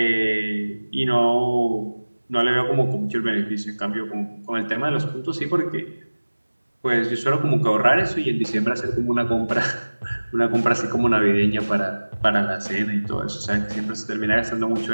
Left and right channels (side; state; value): both; inverted; correlation -1.00